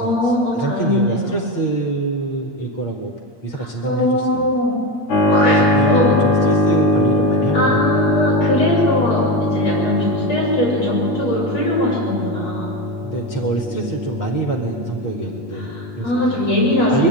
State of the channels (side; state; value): right; late; 8.5 ms